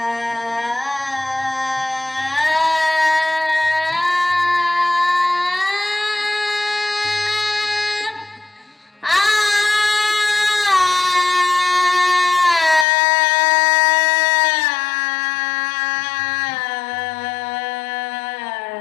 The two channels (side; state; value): right; drops out; at 12.9 s